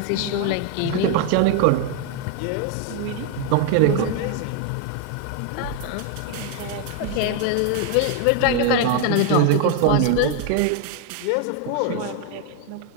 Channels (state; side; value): different; both; correlation 0.01